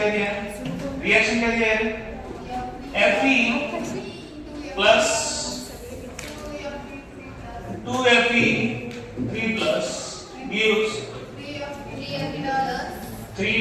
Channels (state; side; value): identical; both; correlation 1.00